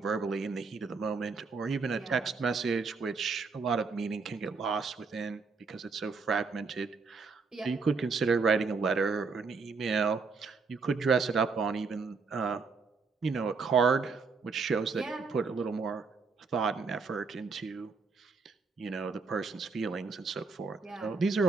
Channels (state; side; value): quieter; left; 4.7 dB